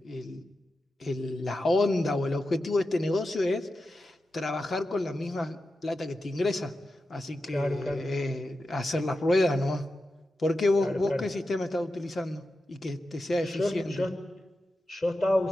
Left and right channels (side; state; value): both; normal; correlation 0.91